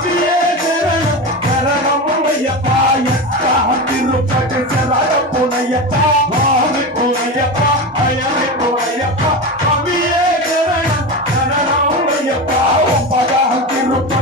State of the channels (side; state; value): both; normal; correlation 0.22